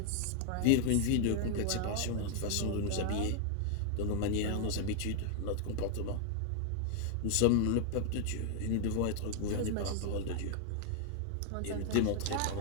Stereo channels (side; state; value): both; different; correlation 0.00